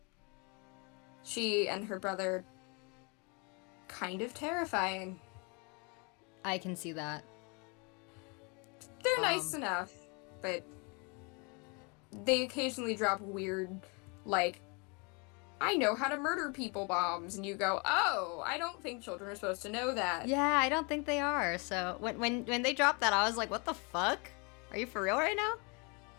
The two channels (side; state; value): right; quieter; 31.8 dB